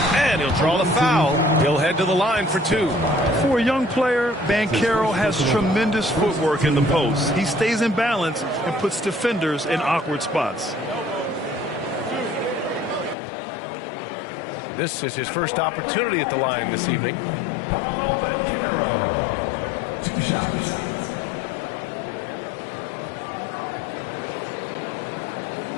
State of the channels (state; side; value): drops out; right; at 13.2 s